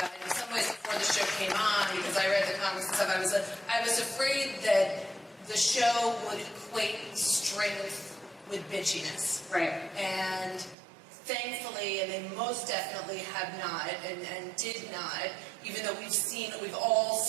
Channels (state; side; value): drops out; left; at 10.8 s